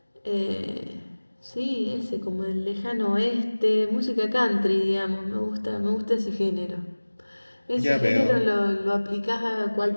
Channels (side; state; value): both; inverted; correlation -1.00